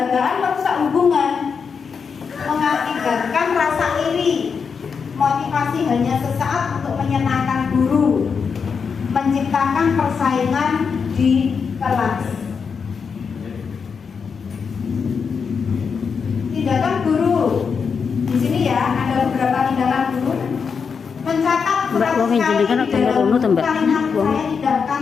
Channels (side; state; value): right; quieter; 5.9 dB